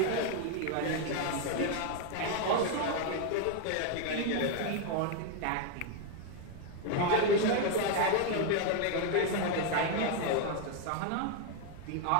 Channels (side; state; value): both; different; correlation 0.01